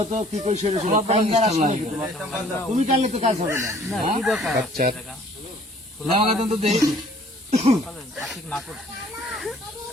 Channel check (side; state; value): both; normal; correlation 0.56